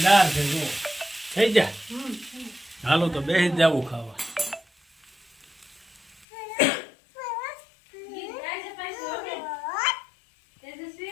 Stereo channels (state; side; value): drops out; right; at 6.2 s